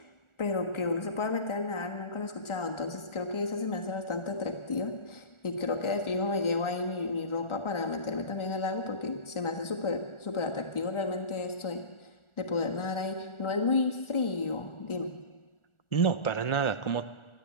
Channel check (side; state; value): right; late; 1.4 ms